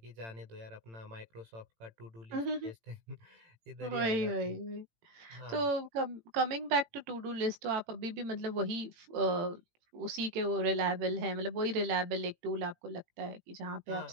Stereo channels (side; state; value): left; late; 18 ms